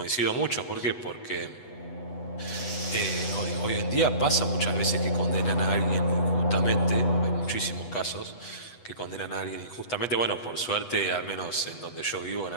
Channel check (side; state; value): right; late; 8.2 ms